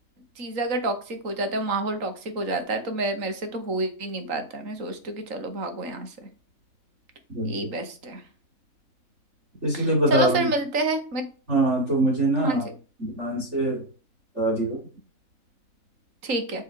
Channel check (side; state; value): left; late; 3.8 ms